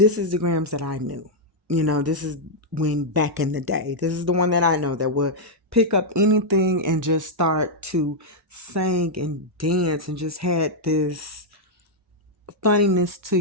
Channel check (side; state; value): both; normal; correlation -0.04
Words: is the gramz that I knew. This is when back in the day. This is the one that I know that would pick up anything and just start to sing and dance and just had this funniness to